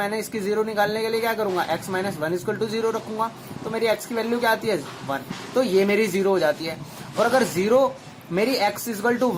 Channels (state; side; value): identical; both; correlation 1.00